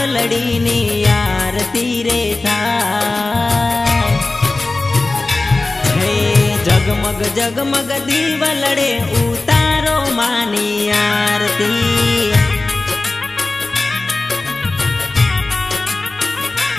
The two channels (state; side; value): quieter; right; 3.2 dB